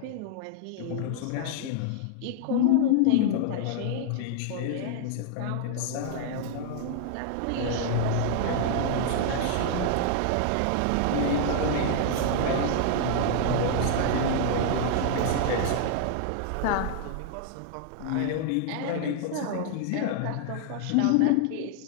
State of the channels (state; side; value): different; both; correlation -0.01